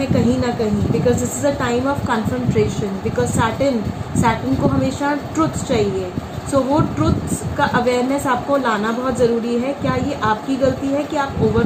कहीं ना कहीं, because this is a time of confrontation. Because Saturn को हमेशा ट्रुथ चाहिए। सो वो ट्रुथ्स का अवेयरनेस आपको लाना बहुत ज़रूरी है। क्या ये आपकी गलती है कि आप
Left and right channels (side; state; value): both; identical; correlation 1.00